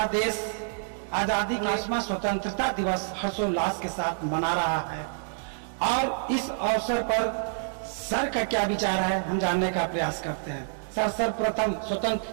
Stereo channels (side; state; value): left; silent; 60 dB below the other